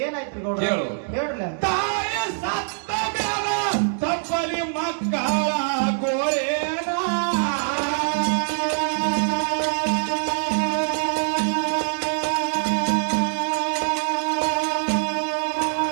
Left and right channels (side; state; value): left; silent; digital silence